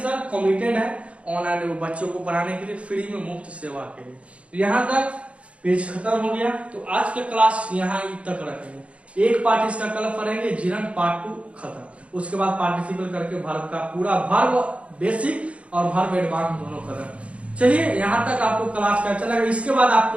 sir committed है ऑनलाइन बच्चों को पढ़ाने के लिए फ्री में, मुफ्त सेवा के लिए। यहाँ तक पेज खत्म हो गया, तो आज के क्लास यहाँ तक रखेंगे, एक पार्ट इसका कल पढ़ेंगे, जिरन पार्ट 2 खत्म, उसके बाद पार्टिसिपल करके वर्ब का पूरा वर्ब बेसिक और वर्ब एडवांस दोनों करें। चलिए यहाँ तक आपको क्लास का अच्छा लगा, इसके बाद आप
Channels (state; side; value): late; left; 0.062 ms